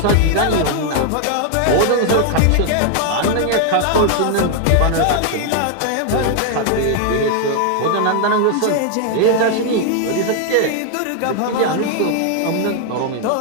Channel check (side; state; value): both; different; correlation 0.00